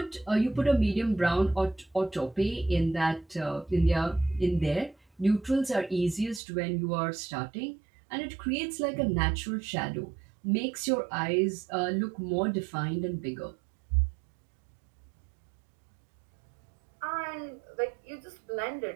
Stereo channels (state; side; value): drops out; left; at 6.4 s